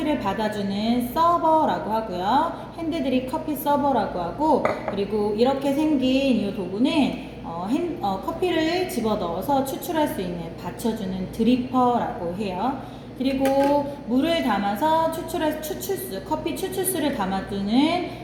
받아주는 서버라고 하고요. 핸드드립 커피 서버라고 하고, 그리고 이렇게 생긴 이 도구는 커피를 집어넣어서 추출할 수 있는 받쳐주는 드리퍼라고 해요. 그리고 물을 담아서 커피 추출수를 담아두는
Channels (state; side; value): identical; both; correlation 1.00